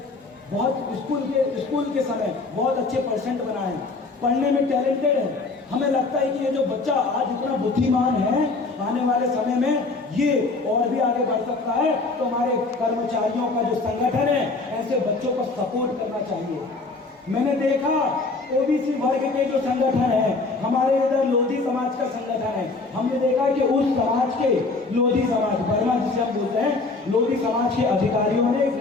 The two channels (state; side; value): quieter; right; 3.7 dB